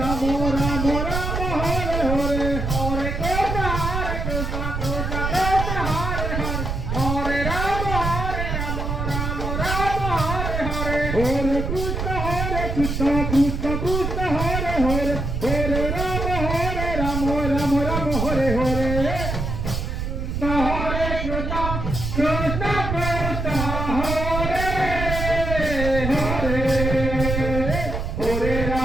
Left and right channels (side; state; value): right; noise; rumble, 3 dB below the sound